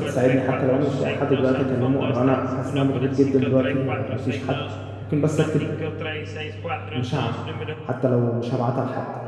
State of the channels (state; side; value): identical; both; correlation 1.00